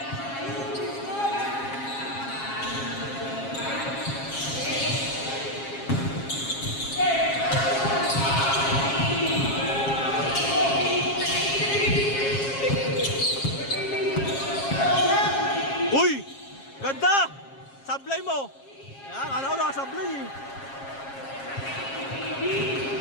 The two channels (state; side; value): late; right; 7.4 ms